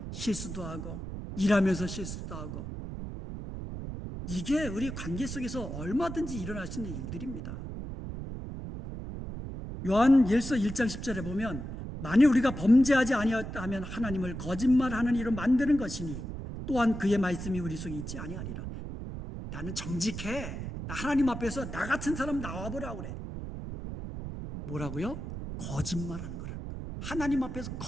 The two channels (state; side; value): noise; right; rumble, 7 dB below the sound